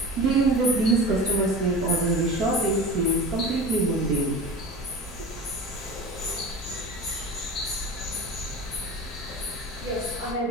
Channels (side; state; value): both; normal; correlation 0.33